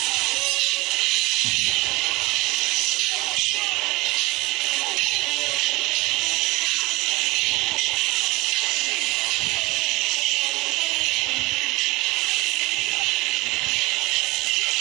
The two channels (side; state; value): left; quieter; 22.3 dB